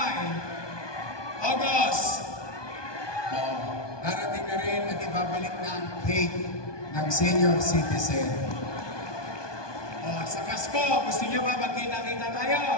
August. Darating na rin at ibabalik na ang cake ng senior citizen. Sa Pasko, gusto niyo ba magkita-kita tayo?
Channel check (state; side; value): late; right; 1.2 ms